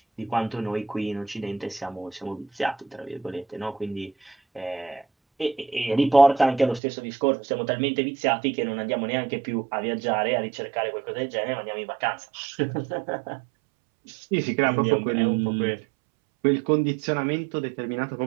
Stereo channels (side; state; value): left; drops out; at 6.8 s